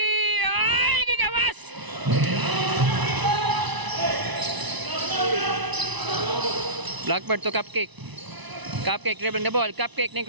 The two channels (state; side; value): late; left; 1.0 ms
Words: Ay, gigawas. Blackbird to Cupcake. Cupcake dribbling the ball. Cupcake ning